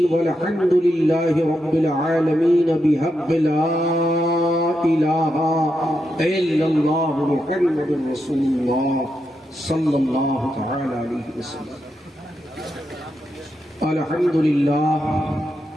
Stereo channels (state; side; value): normal; both; correlation 0.85